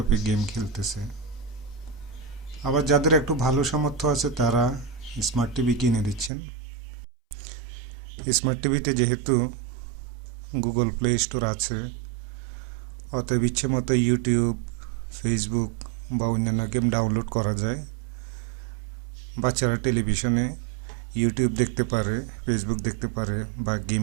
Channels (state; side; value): drops out; left; at 6.3 s